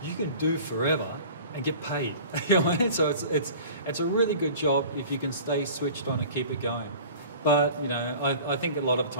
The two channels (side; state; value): both; inverted; correlation -0.42